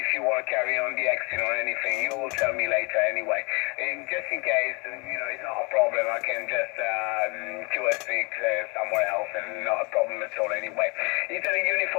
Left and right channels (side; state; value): right; quieter; 29.8 dB